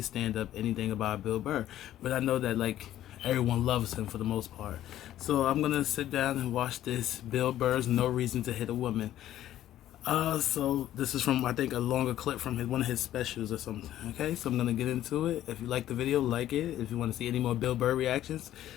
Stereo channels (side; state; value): right; quieter; 12.8 dB